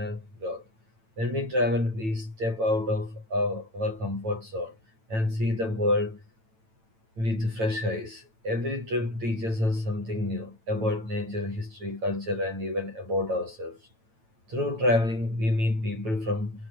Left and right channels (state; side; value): late; left; 9.0 ms